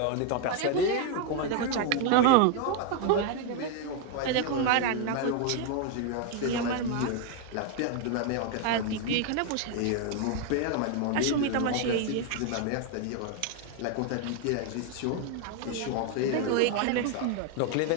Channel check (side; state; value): both; different; correlation 0.01